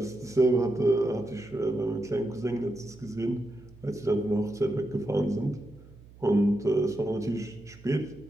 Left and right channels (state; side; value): noise; right; hum, 22 dB below the sound